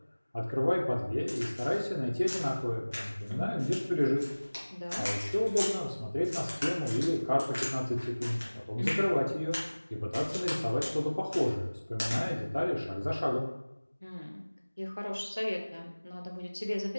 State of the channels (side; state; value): both; inverted; correlation -1.00